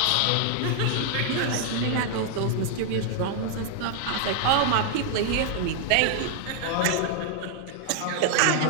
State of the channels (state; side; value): different; both; correlation 0.00